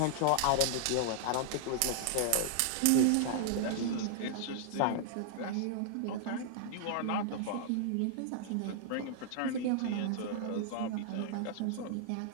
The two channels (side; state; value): both; different; correlation -0.01